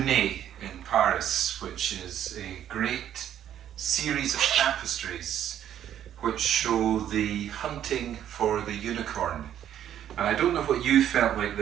in Paris, which is a great series of tapestries which show the hunting for the unicorn. And I don't know what you felt like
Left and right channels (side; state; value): left; quieter; 10.5 dB